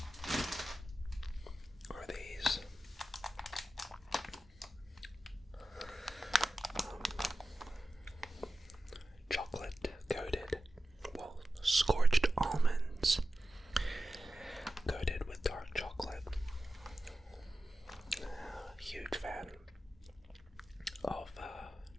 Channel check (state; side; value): normal; both; correlation 0.94